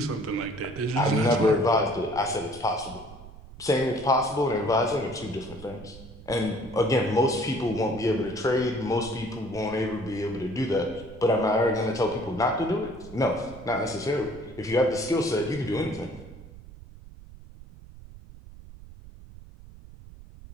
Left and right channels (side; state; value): right; noise; rumble, 17 dB below the sound